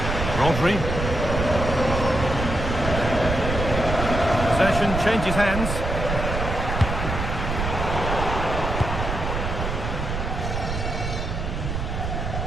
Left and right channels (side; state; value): right; noise; rumble, 3 dB below the sound